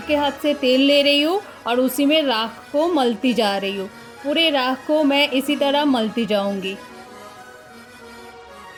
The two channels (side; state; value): both; identical; correlation 1.00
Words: हाथ से तेल ले रही हूँ और उसी में राख को मलती जा रही हूँ। पूरे राख को मैं इसी तरह मलती जाऊँगी।